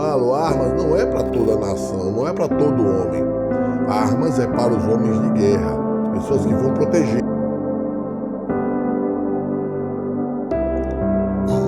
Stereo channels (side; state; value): both; identical; correlation 1.00